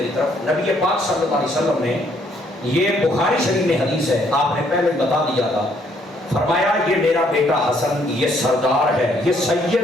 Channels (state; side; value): normal; both; correlation 0.68